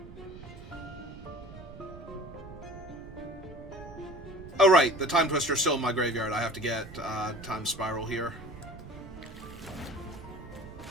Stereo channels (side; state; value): right; noise; rumble, 15 dB below the sound